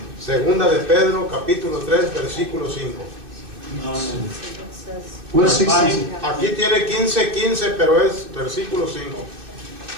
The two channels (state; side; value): late; left; 2.6 ms